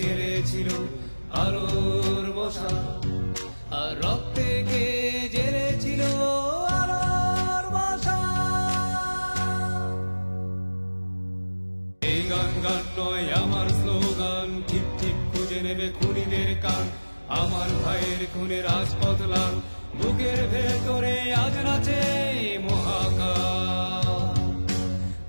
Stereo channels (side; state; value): both; inverted; correlation -1.00